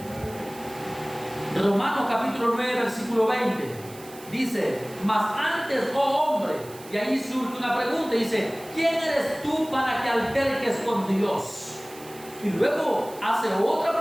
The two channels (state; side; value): noise; right; hiss, 19 dB below the sound